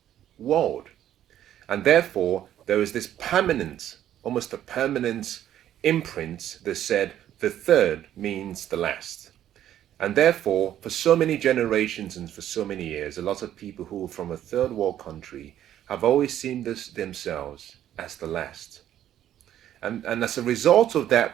world. And therefore, there was this permanent, almost a permanent imprint that said the third means the last. And therefore, for so many generations and for so many years, a lot of people who are from a third world country have always seen themselves as the last. And as a result of that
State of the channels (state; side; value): quieter; left; 11.4 dB